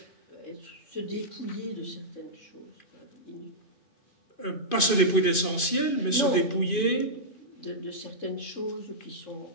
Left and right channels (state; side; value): late; right; 2.5 ms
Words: Se dépouiller de certaines choses. Pas se dépouiller d'essentiel, mais se dépouiller de certaines choses qui sont